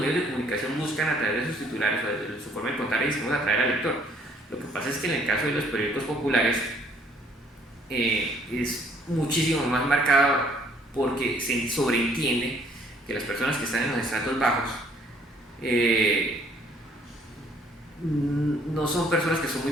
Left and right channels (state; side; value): normal; both; correlation 0.63